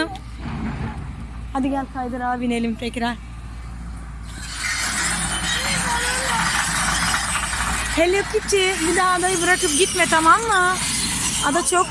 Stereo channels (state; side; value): identical; both; correlation 1.00